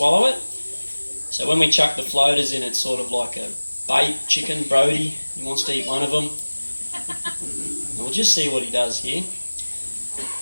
it. So when we chuck the floaters in, it's sort of like a bait chicken, Brody. He wants to eat one of them. We'll just see what he does here.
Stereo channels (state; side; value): inverted; both; correlation -1.00